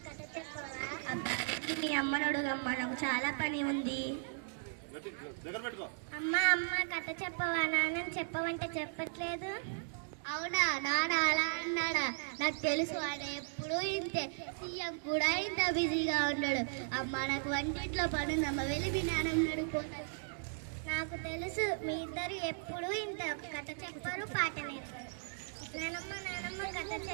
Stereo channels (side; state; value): left; silent; digital silence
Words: కథ చెప్పవా? అబ్బా మీ అమ్మనడుగమ్మా, నాకు చాలా పని ఉంది. అమ్మా అమ్మ కథ చెప్పవా? నాన్న చెప్పవంటే చెప్పట్లేదు. అవునా, నాన్న అలా అన్నాడా? నాకు తెలుసు, ఆయన ఎప్పుడు ఇంతే. సీఎం కూడా ఇంత బిజీగా ఉన్నాడు. అమ్మ నాకు వంటింట్లో పనుందమ్మ, వెళ్ళి మీ నాన్నని అడుగుతాను. నాకు తెలుసు, మీ ఇద్దరు ఎప్పుడు ఇంత కథ చెప్పారు, పాట నేర్పారు. నానమ్మ కథ